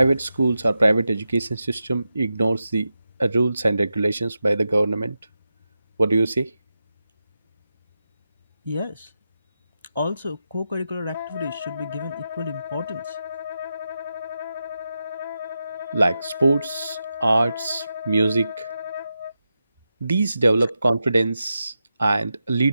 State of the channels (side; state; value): both; inverted; correlation -0.89